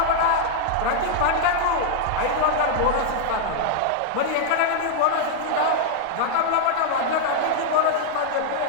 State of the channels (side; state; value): both; different; correlation -0.01